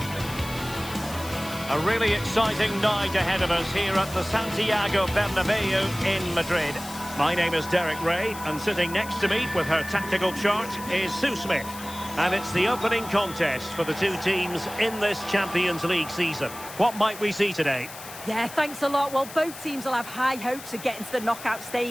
A really exciting night ahead of us here at the Santiago Bernabeu in Madrid. My name is Derek Ray, and sitting next to me with her tactical chart is Sue Smith. And it's the opening contest for the two teams in this Champions League season. What might we see today? Yeah, thanks a lot. Well, both teams will have high hopes of getting to the knockout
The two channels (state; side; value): noise; left; hiss, 14 dB below the sound